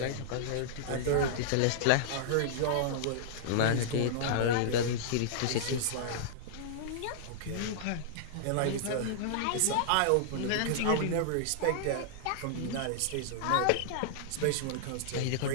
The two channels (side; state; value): both; different; correlation -0.01